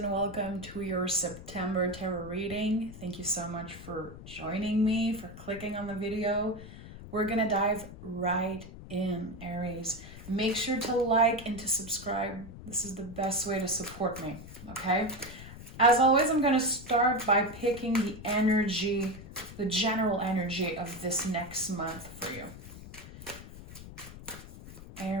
welcome to your September tarot reading. Thank you so much for joining me, for clicking on the video. We're gonna dive right in, Aries. Make sure to like and to subscribe. This is the best way to support me, okay? As always, I'm gonna start by picking the energy, the general energy of this next month for you.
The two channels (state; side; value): noise; left; rumble, 14 dB below the sound